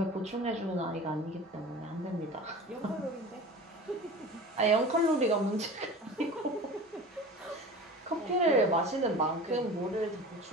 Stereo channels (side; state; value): both; normal; correlation 0.36